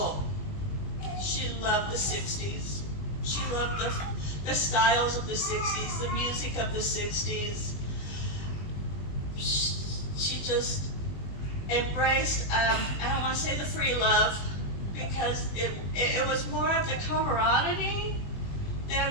She loved the 60s. She loved the styles of the 60s, the music of the 60s. She just embraced, I don't want to say the free love, because it was more of the camaraderie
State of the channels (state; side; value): late; right; 20 ms